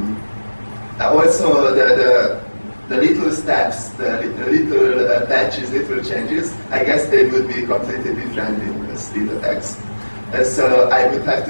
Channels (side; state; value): both; inverted; correlation -1.00